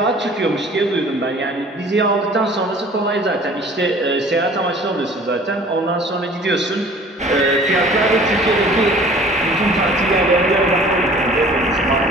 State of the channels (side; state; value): both; normal; correlation 0.49